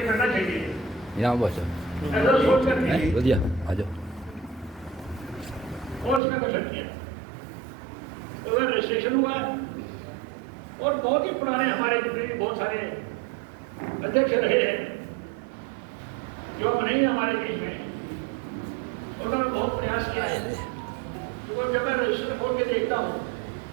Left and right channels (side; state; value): left; drops out; at 6.2 s